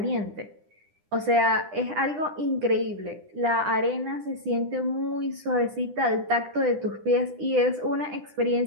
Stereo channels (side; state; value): left; late; 9.9 ms